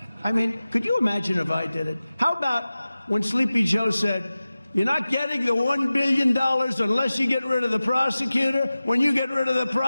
I mean, could you imagine if I did it? How about when Sleepy Joe said, you're not getting the $1 billion unless you get rid of the prosecutor. When you get rid of the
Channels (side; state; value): both; inverted; correlation -0.96